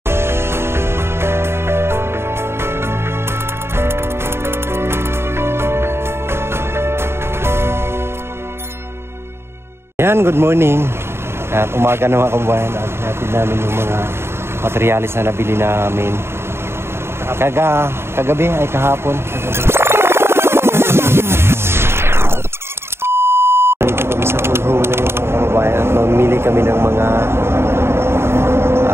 Yan, good morning. At umaga na mga kababayan at hatid namin yung mga materialis na nabili namin kagabi ay kahapon. Dito kami sa Pulho na yung mga kababayan at mamili kami ng mga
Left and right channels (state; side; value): late; left; 0.12 ms